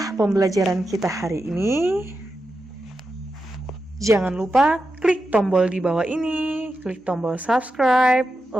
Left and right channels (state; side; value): normal; both; correlation 0.89